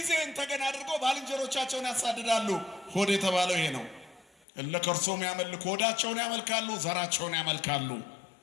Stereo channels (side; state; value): right; drops out; at 4.5 s